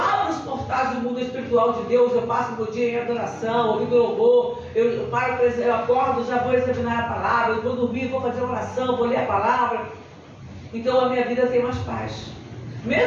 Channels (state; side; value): identical; both; correlation 1.00